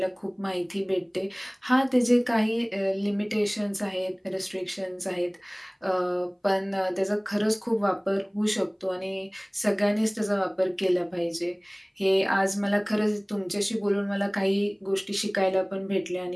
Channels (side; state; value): both; identical; correlation 1.00